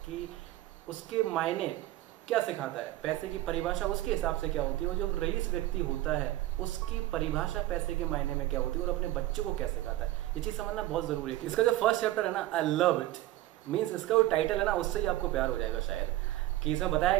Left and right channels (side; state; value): left; quieter; 15.8 dB